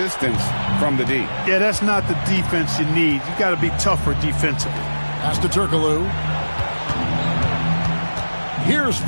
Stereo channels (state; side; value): inverted; both; correlation -1.00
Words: from the D. Yeah, that's not the defense you need. You got to be tougher defensively. Pass to Turkoglu. Here's